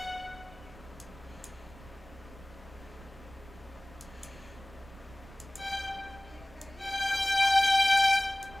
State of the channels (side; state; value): right; noise; rumble, 20 dB below the sound